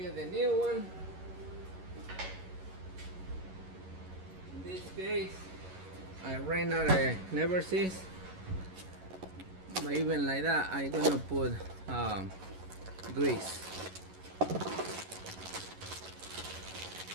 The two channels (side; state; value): left; late; 11 ms